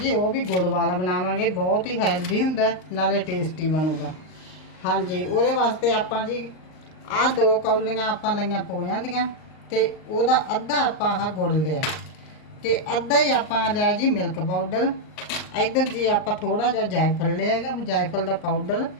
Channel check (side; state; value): right; late; 39 ms